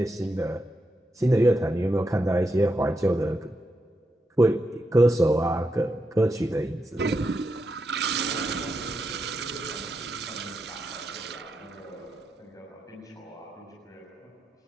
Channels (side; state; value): both; normal; correlation 0.85